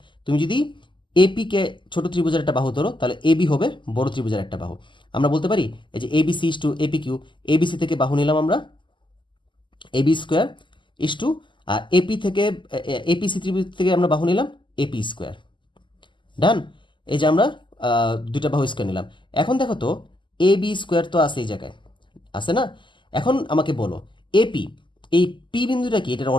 তুমি যদি এপি কে ছোট ত্রিভুজের একটা বাহু ধরো, তাহলে এবি হবে বড় ত্রিভুজের একটা বাহু। আমরা বলতে পারি এই যে ABC is to AP Q, ABC থেকে বাহু নিলাম আমরা এবি স্কোয়ার ইস টু, আর এপি থেকে এপিসি ত্রিভুজ থেকে আমরা বাহু নিলাম এপি স্কোয়ার। ডান। এই যে আমরা দুইটা বাহু স্কোয়ার নিলাম। এখন দেখো তো এ বি স্কোয়ার তো আছে এই জায়গায়, আছে না? এখন আমাকে বলো এপি, এই পি বিন্দুটা কি, এটার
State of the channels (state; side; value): late; right; 0.24 ms